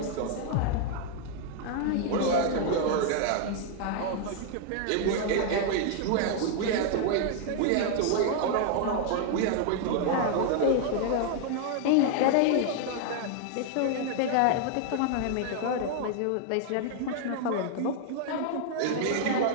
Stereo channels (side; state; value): both; different; correlation 0.00